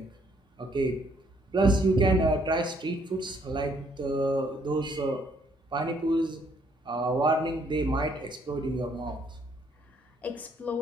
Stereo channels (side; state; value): both; normal; correlation 0.67